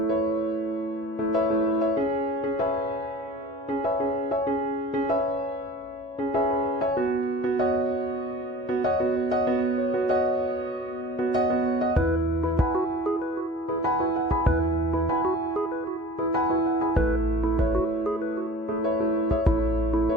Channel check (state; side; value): normal; both; correlation 0.41